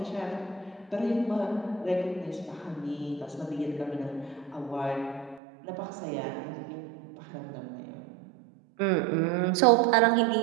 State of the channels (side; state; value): left; drops out; at 5.4 s